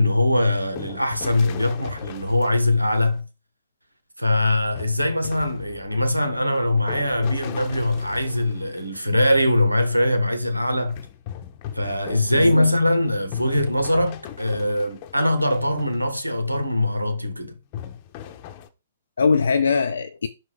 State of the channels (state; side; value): inverted; both; correlation -0.90